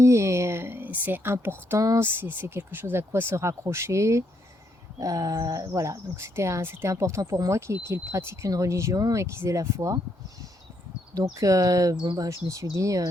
et c'est important, c'est quelque chose à quoi se raccrocher. Voilà, donc c'était important pour moi qu'ils pratiquent une religion et qu'ils aient la foi. Donc bon, bah, je me suis dit,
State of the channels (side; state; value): both; normal; correlation 0.75